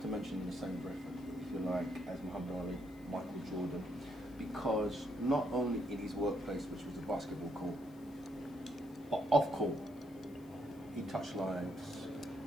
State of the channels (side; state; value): left; noise; hiss, 27 dB below the sound